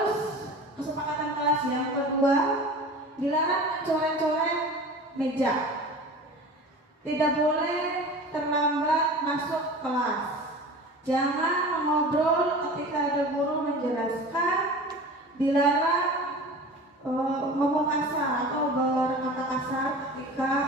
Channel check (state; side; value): normal; both; correlation 0.37